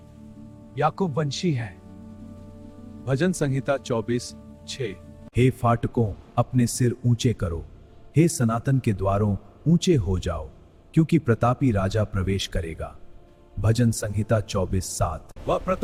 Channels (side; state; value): both; identical; correlation 1.00